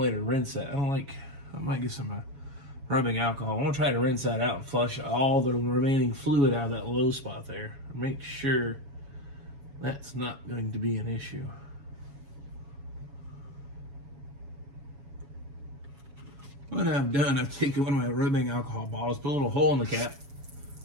to rinse that. I might get some rubbing alcohol. I want to try to rinse that out and flush all the remaining fluid out of that low spot there. Make sure that's not going to be an issue. What I've done, I've taken one of my rubbing alcohol bottles, put a little hole in the cap,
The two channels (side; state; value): left; late; 7.2 ms